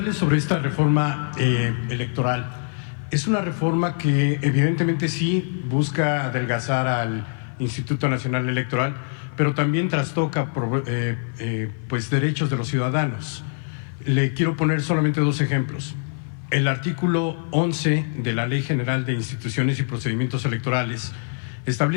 sobre esta reforma electoral. Es una reforma que evidentemente sí busca adelgazar al Instituto Nacional Electoral, pero también trastoca pues derechos de los ciudadanos. Le quiero poner solamente dos ejemplos. El artículo 11 de la Ley General de Instituciones y Procedimientos Electorales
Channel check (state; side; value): silent; right; 55 dB below the other